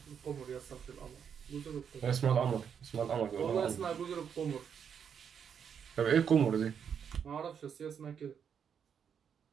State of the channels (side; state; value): left; quieter; 7.6 dB